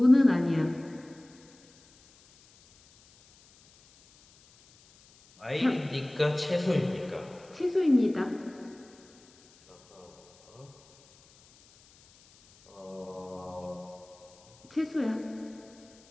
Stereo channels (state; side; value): noise; left; hiss, 27 dB below the sound